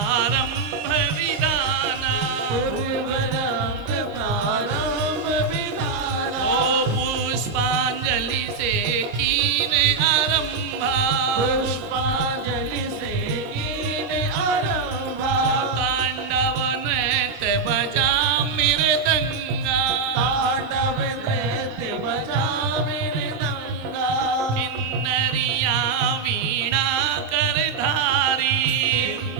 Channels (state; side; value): quieter; left; 4.7 dB